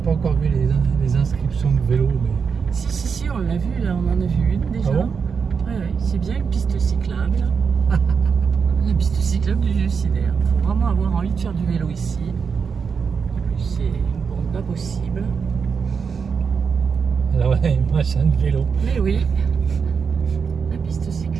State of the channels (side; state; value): left; quieter; 6.0 dB